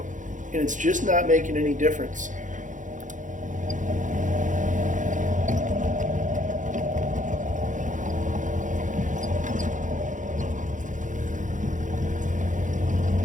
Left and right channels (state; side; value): late; left; 0.37 ms